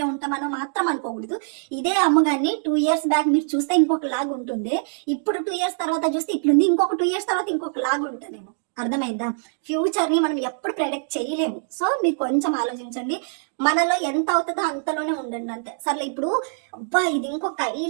ఉంటామనో మాత్రం అనుకోకూడదు. ఇదే అమ్మగారిని 2 years బ్యాక్ మీరు చూస్తే ఇంకొక లాగా ఉంటుంది, ఇప్పుడు 2 years తర్వాత చూస్తే ఇట్లుంది, ఇంకొక 2 years తర్వాత ఇంకొక లాగా ఉంటుందేమో. అర్థమైందా? ఫ్యూచర్ ని మనం ఎప్పుడు ప్రెడిక్ట్ చేయలేము. సో మీరు కొంచెం ఆలోచించండి, మనలో ఎంత అవుతుందో అంతలోనే ఉండండి అంతే. సర్లే ఇప్పుడు అబ్బా ఇది ఇంకొక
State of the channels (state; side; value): silent; left; digital silence